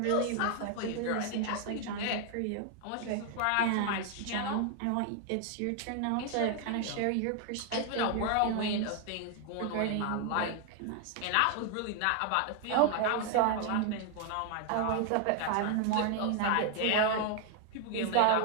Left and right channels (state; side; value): different; both; correlation 0.00